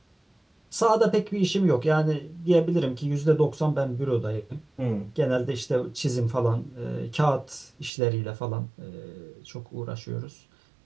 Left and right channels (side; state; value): left; drops out; at 7.9 s